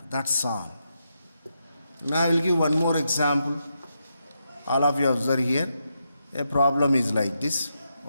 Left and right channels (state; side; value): inverted; both; correlation -0.84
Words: That's all. Now I will give one more example. All of you observe here. A problem is like this.